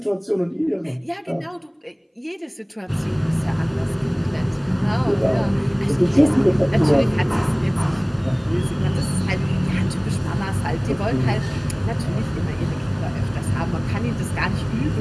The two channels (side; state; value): both; identical; correlation 1.00